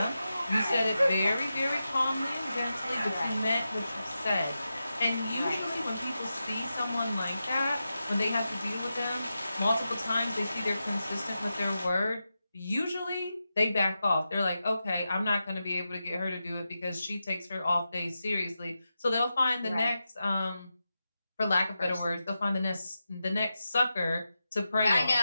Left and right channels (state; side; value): inverted; both; correlation -0.90